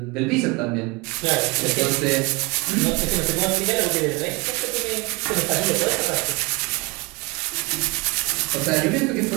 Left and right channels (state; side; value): quieter; left; 26.9 dB